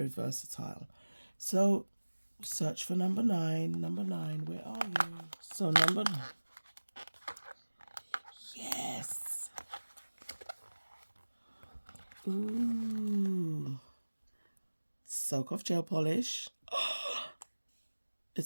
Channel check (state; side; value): inverted; both; correlation -1.00